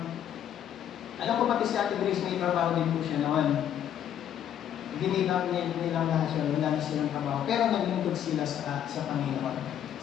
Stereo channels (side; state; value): right; quieter; 10.1 dB